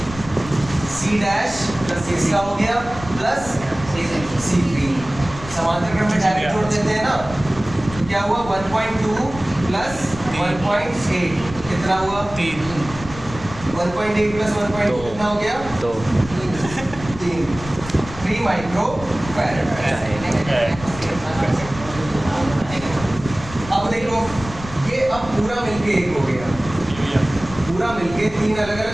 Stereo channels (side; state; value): left; noise; rumble, 13 dB below the sound